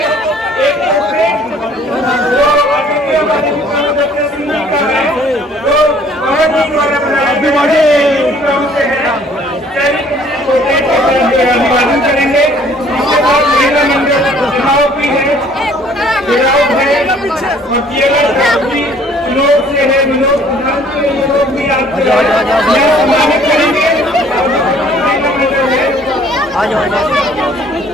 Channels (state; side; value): normal; both; correlation 0.57